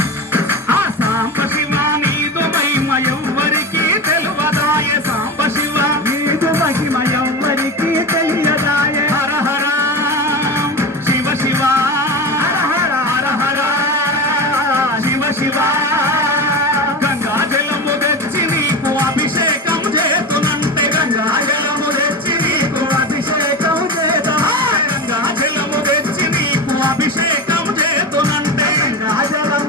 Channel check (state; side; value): normal; both; correlation 0.24